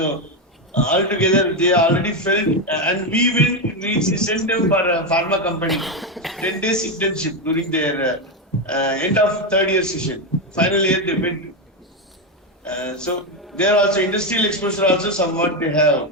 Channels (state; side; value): normal; both; correlation 0.08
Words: altogether they already felt, and we sent them for a pharma company 10 days internship during their end of third year session. Final year they went. So there also industrial exposure also somewhat they have.